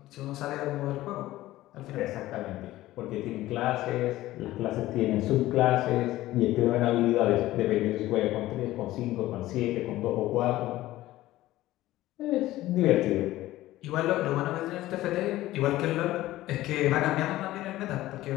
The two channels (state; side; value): quieter; right; 16.0 dB